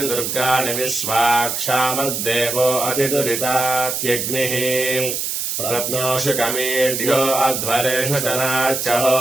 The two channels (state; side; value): noise; right; hiss, 2 dB below the sound